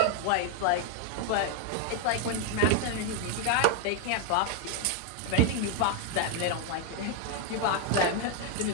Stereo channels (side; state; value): both; different; correlation 0.00